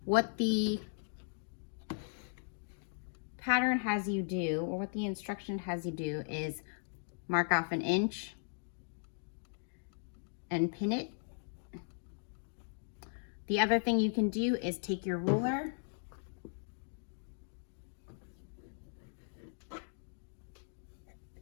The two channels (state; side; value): silent; right; digital silence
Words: What the pattern has you do, or what the instruction has you do, is mark off an inch and pin it. The other thing you can do is take your ruler